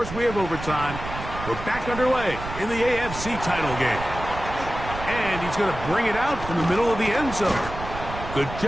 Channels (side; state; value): right; noise; rumble, 9 dB below the sound